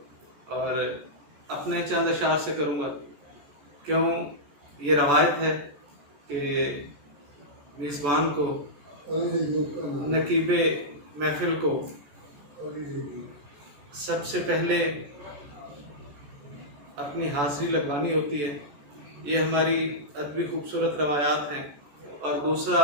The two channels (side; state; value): left; late; 14 ms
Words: اور اپنے چند اشعار سے کروں گا، کیوں یہ روایت ہے کہ میزبان کو، نقیب محفل کو سب سے پہلے اپنی حاضری لگوانی ہوتی ہے۔ یہ ہماری ادبی خوبصورت روایات ہیں۔ اور دوسرا،